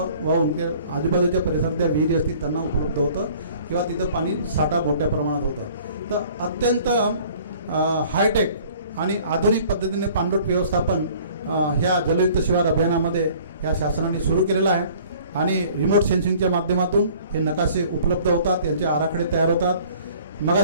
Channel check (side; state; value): both; inverted; correlation -0.52